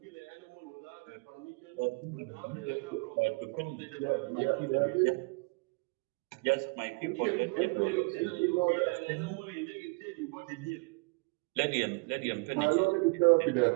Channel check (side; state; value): left; quieter; 30.0 dB